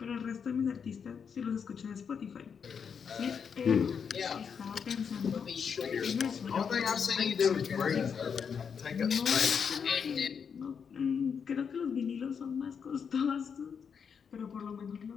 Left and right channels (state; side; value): quieter; right; 6.7 dB